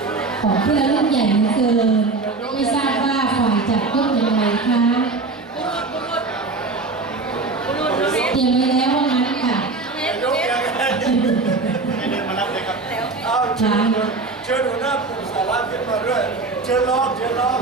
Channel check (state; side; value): quieter; left; 3.8 dB